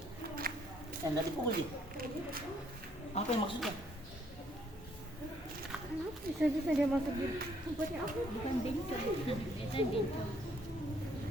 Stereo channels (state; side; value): normal; both; correlation 0.67